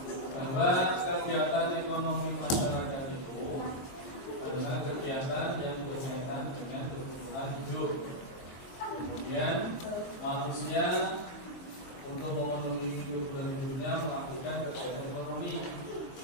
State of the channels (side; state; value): right; late; 23 ms